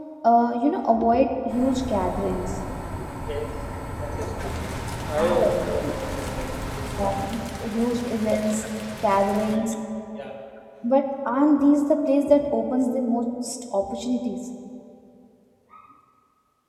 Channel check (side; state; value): both; identical; correlation 1.00